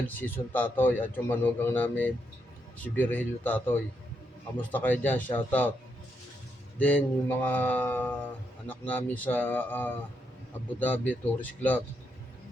Season Tatoy, at yung manugang namin si Virgilio Tatoy. Kamusta kayo dyan? Shoutout. Then yung mga anak namin sa Abu Dhabi Tourist Club,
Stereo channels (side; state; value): both; normal; correlation 0.80